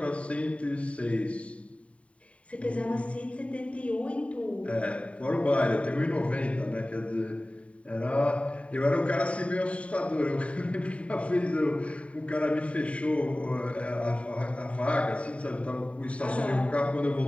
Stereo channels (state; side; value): late; right; 0.064 ms